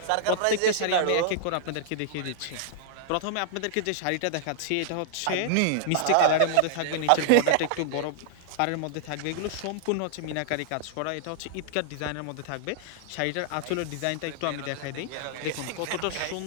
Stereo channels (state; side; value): different; both; correlation -0.01